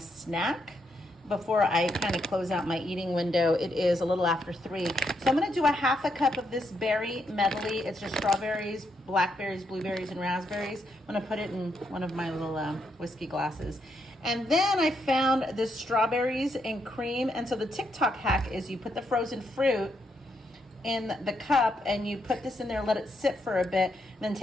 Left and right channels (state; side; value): normal; both; correlation 0.79